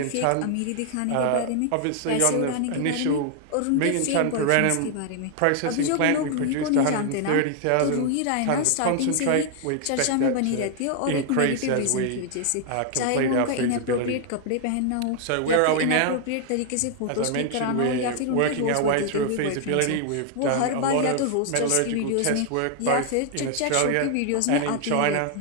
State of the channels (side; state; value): both; different; correlation 0.00